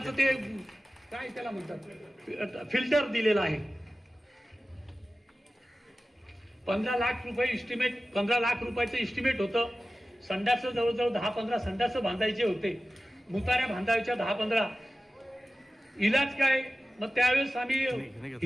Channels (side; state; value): both; normal; correlation 0.95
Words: ते काय त्याला म्हणतात फिल्टर दिलेलं आहे. 15 लाख रुपये इस्टिमेट, 15 लाख रुपयाचं इस्टिमेट होतं. संडासं जवळजवळ 10-15 संडासं बांधायचे होते. मुताऱ्या बांधायच्या 10-15. इलाज काय? मग त्यावेळेस आम्ही